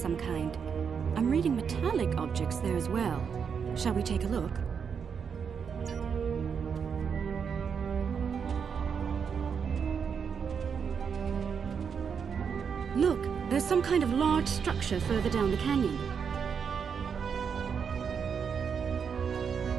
kind. I'm reading metallic objects there as well. Shall we take a look? Look, there's some kind of large structure further down the canyon.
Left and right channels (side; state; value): left; quieter; 6.6 dB